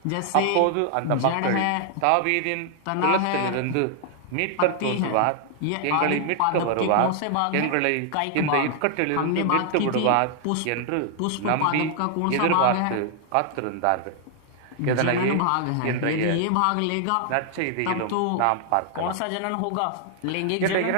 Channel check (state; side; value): different; both; correlation 0.00